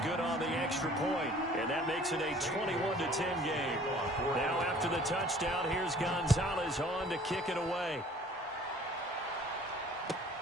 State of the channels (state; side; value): normal; both; correlation 0.52